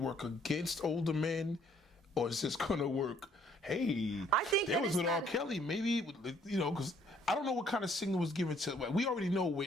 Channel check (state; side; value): normal; both; correlation 0.63